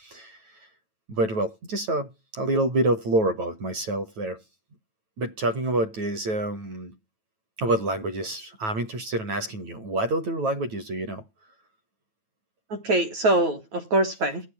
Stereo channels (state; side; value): late; left; 9.2 ms